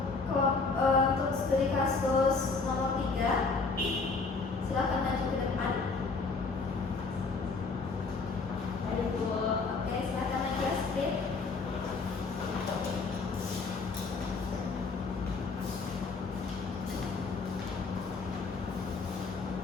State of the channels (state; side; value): quieter; right; 4.2 dB